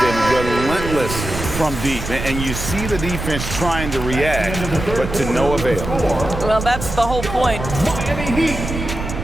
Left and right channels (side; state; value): right; noise; rumble, 6 dB below the sound